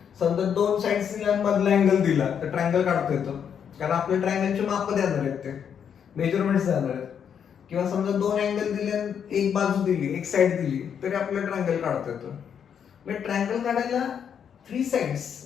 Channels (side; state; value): right; quieter; 7.9 dB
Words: समजा 2 साइड्स दिल्या मधला अँगल दिला तर ट्रायंगल काढता येतो कारण आपल्या ट्रायंगलचे माप देणार आहेत, ते मेजरमेंट्स देणार आहेत. किंवा समजा 2 अँगल दिले, एक बाजू दिली, एक साइड दिली तरी आपल्याला ट्रायंगल काढता येतो. म्हणजे ट्रायंगल काढायला 3